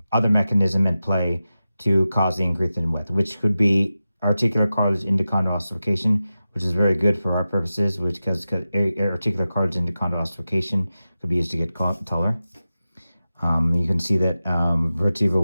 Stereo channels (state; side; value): inverted; both; correlation -0.94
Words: other mechanism in play to cause the increase in width, which could be articular cartilage endochondral ossification, which is very good for our purposes, which because articular cartilage endochondral ossification could be used to get taller. You can see that vertebral